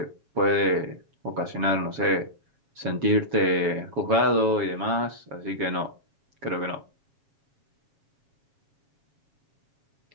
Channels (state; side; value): late; left; 7.2 ms